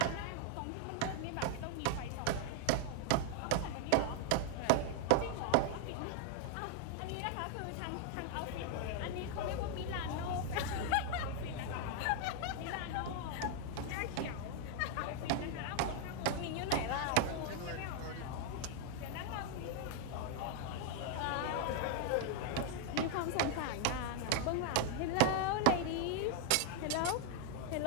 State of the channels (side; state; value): both; different; correlation 0.00